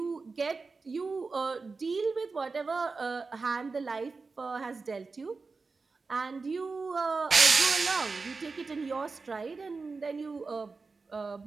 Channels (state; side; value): quieter; left; 4.2 dB